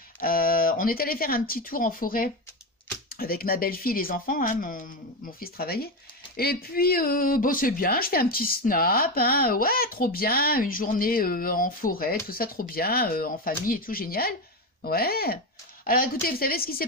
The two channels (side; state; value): both; normal; correlation 0.14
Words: On est allé faire un petit tour en forêt avec ma belle-fille et les enfants, hein, mon fils travaillait. Et puis, bon, c'est bien, je fais un petit snap, hein, ouais, trop bien, une journée en forêt, tout ça, trop bien, en famille et tout, génial. Ouais. Alors écoutez, vous savez ce qui s'est